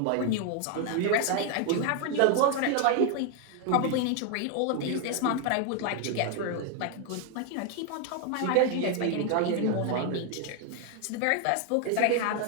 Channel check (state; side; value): different; both; correlation 0.00